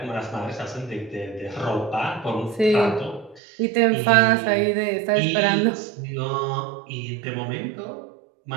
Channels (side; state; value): left; drops out; at 3.4 s